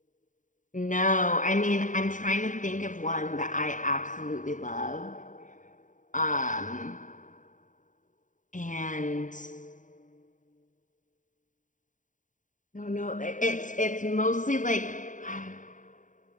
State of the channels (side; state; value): right; late; 0.37 ms